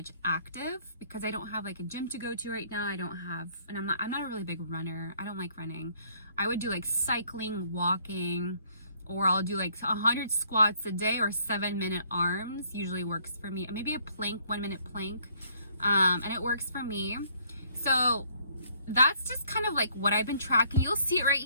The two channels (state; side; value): inverted; both; correlation -0.64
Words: active because I don't have like a gym to go to right now. I don't have, and I'm not a really big runner. I don't like running. I would do like cycling, walking, or I'll do like 100 squats a day or 7-minute arms. Usually works for me. Maybe a plank, 1-minute plank. And it works for me. So that's just kind of like what I've been tracking. You'll see it right